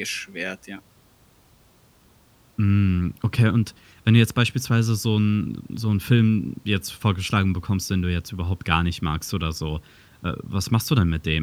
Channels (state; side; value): identical; both; correlation 1.00